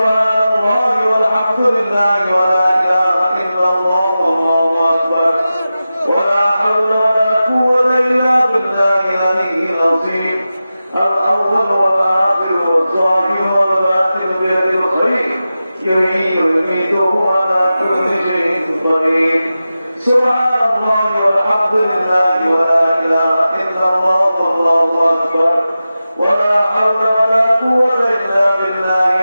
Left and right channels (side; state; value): both; inverted; correlation -0.94